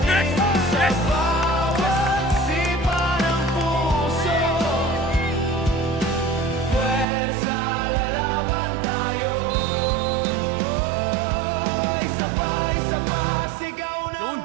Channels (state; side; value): drops out; left; at 7.1 s